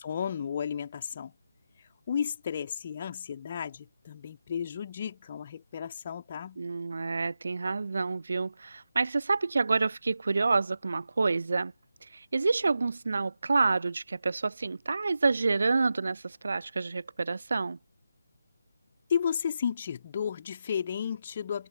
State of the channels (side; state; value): both; inverted; correlation -0.89